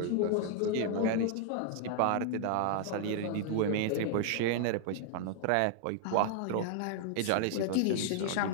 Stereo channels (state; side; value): different; both; correlation 0.00